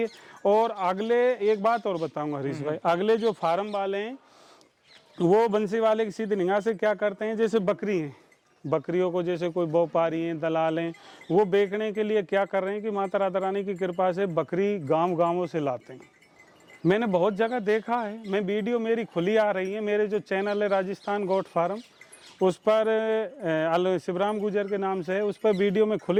है। और अगले एक बात और बताऊंगा हरीश भाई, अगले जो फार्म वाले हैं वो बंसी वाले की सीधी निगाह से क्या करते हैं, जैसे बकरी है, बकरियों को जैसे कोई व्यापारी हैं, दलाल हैं, वो बेचने के लिए क्या कर रहे हैं कि माता राधा रानी की कृपा से बकरी गांवों से लाते हैं। मैंने बहुत जगह देखा है, मैं वीडियो मेरी खुली आ रही है, मेरे जो चैनल है राजस्थान गोट फार्म, उस पर शिवराम गुजर के नाम से है, उस पर वीडियो में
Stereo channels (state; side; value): identical; both; correlation 1.00